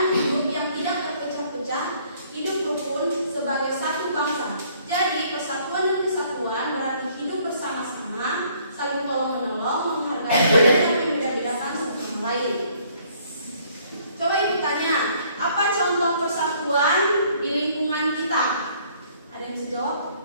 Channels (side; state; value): both; inverted; correlation -0.62